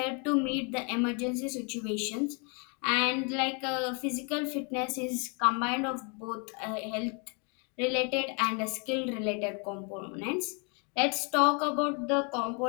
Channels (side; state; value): right; quieter; 34.9 dB